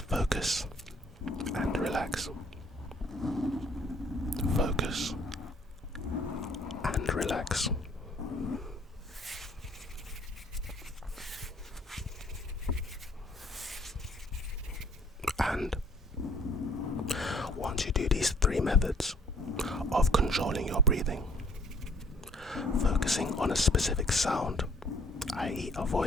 focus and relax. Focus and relax. And once you do these 3 methods of controlling your breathing, focusing on a specific sound, i.e. a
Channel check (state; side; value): normal; both; correlation 0.59